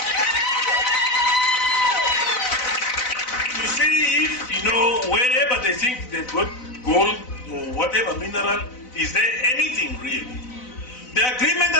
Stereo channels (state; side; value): late; right; 4.0 ms